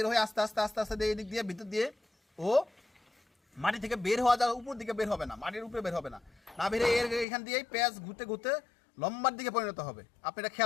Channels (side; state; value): right; drops out; at 7.2 s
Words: হয়ে আস্তে আস্তে আস্তে আস্তে এই দিক দিয়ে ভিতর দিয়ে ও মাটি থেকে বের হওয়া যাওয়া উপর দিকে বের হবে না, মাটির উপরে বের হবে না, না বেরে এর এখান দিয়েই পেঁয়াজ ঘুরতে ঘুরতে লম্বার দিকে পরিণত হবে। আপনি এটা